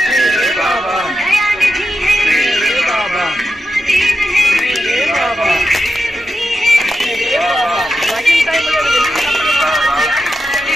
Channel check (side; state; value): both; normal; correlation 0.88